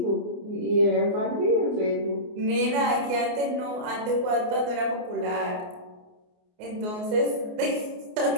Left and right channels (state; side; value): late; left; 28 ms